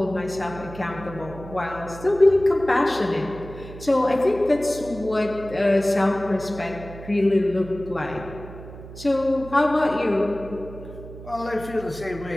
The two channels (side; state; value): right; noise; hum, 14 dB below the sound